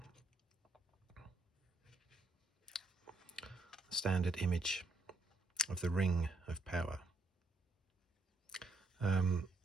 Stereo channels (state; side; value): quieter; left; 3.0 dB